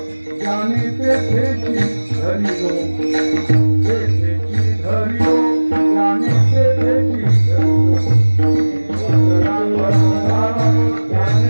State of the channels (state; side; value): inverted; both; correlation -1.00